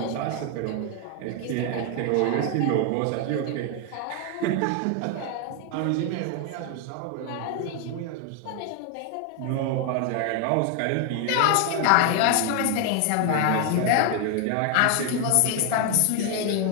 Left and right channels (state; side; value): different; both; correlation 0.01